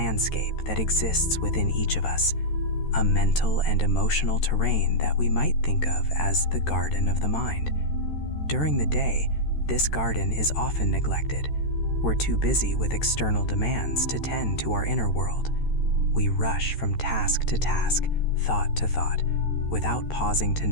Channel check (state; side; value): late; right; 13 ms